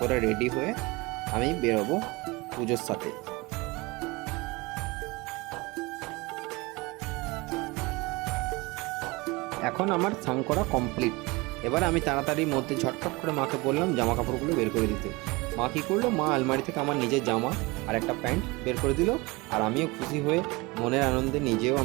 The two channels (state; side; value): quieter; left; 24.2 dB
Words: রেডি হয়ে আমি বেরোবো পুজোর সাথে। এখন আমার স্নান করা কমপ্লিট। এবার আমি তাড়াতাড়ির মধ্যে ঝটপট করে মাকে বললাম জামা কাপড়গুলো বের করে দিতে। মা কী করলো, মা আলমারি থেকে আমার নিজের জামা আর একটা প্যান্ট বের করে দিল। আর আমিও খুশি হয়ে মনের আনন্দে নিজেও